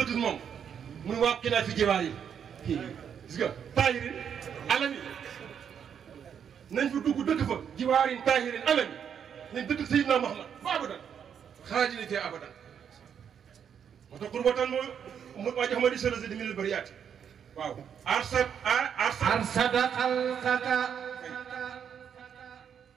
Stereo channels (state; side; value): quieter; left; 8.0 dB